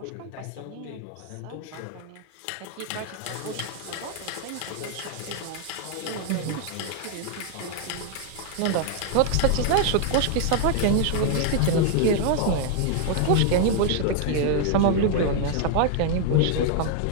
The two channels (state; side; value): different; both; correlation 0.00